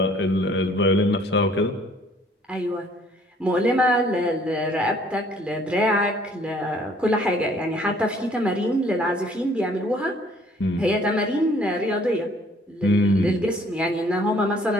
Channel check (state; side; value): normal; both; correlation 0.59